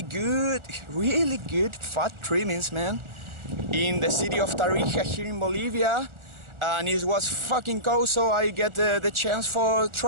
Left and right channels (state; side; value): late; left; 1.4 ms